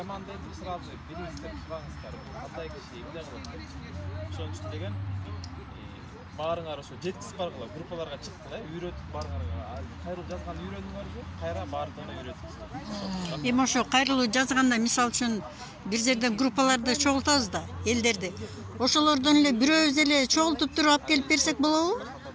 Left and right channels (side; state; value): both; identical; correlation 1.00